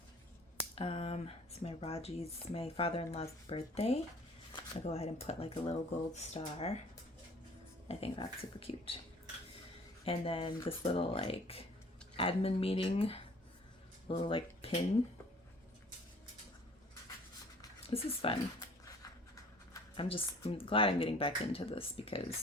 It's my father-in-law's birthday. I'll go ahead and put like a little gold star. I think that's super cute. And then this little like admin meeting, little like pin. This is fun. I'm glad I'm getting back into this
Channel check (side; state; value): both; normal; correlation 0.52